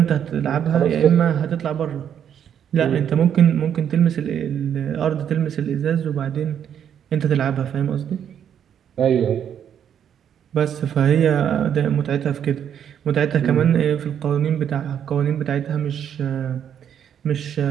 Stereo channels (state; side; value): quieter; left; 8.9 dB